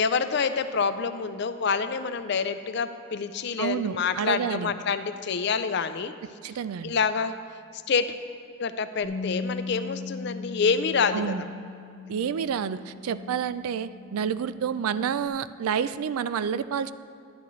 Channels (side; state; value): both; normal; correlation -0.17